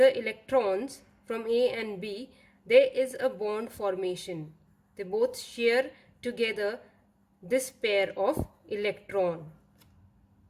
electrons from A and B, there is a bond formation. They both share together this pair of electron.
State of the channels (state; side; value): identical; both; correlation 1.00